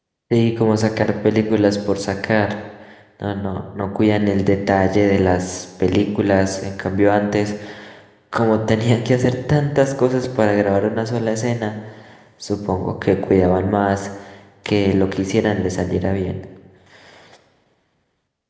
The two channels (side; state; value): both; identical; correlation 1.00